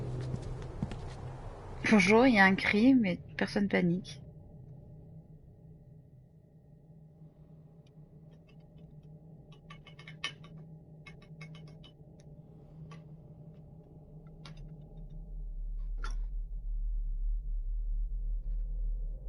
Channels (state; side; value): identical; both; correlation 1.00